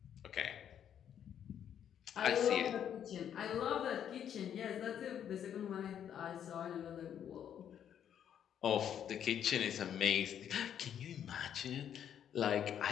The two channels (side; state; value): right; quieter; 9.3 dB